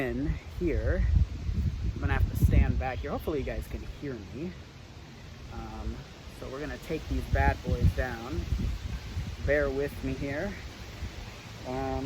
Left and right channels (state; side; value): identical; both; correlation 1.00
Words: here. I'm gonna have to stand back here. Hopefully you guys can hear me. So we're gonna take these bad boys down. Bear with me here.